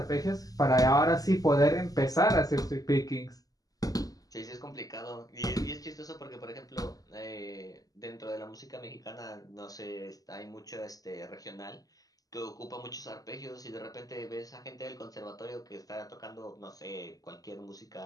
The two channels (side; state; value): right; late; 0.17 ms